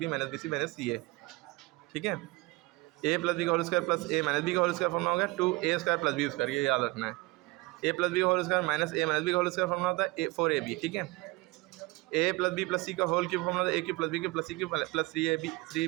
b c c a, ठीक है। A plus b का whole square plus a minus b का whole square formula हो गया 2a square plus B square, ये याद रखना है। ए प्लस बी का whole square minus a minus b का होल स्क्वायर फॉर्मूला होता है 4ab, ठीक है। A plus b plus c का होल क्यूब फॉर्मूला था a cube plus b cube plus c cube plus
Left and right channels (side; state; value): left; quieter; 23.0 dB